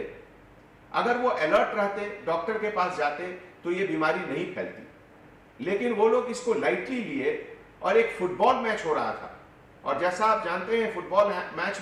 अगर वो अलर्ट रहते, डॉक्टर के पास जाते तो ये बीमारी नहीं फैलती। लेकिन वो लोग इसको लाइटली लिए और एक फुटबॉल मैच हो रहा था और जैसा आप जानते हैं फुटबॉल मैच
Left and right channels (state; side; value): identical; both; correlation 1.00